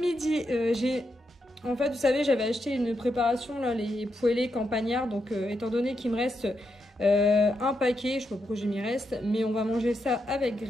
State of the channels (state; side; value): normal; both; correlation 0.83